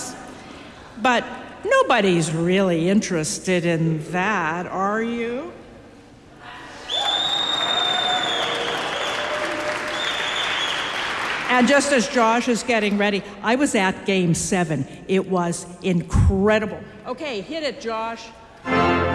but nobody's really interested in that, are you? And just as Josh is getting ready, I was at Game 7. It was incredible. Okay, hit it, Josh.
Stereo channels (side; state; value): both; identical; correlation 1.00